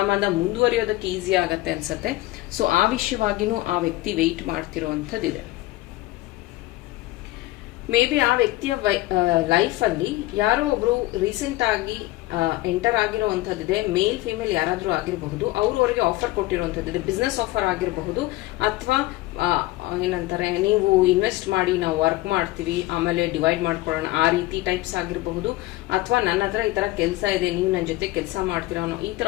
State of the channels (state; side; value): quieter; right; 18.4 dB